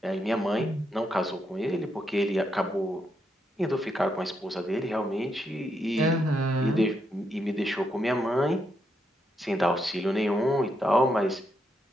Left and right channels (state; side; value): normal; both; correlation 0.80